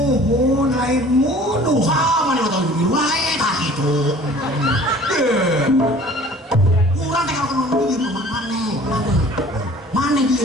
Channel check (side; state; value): both; normal; correlation 0.49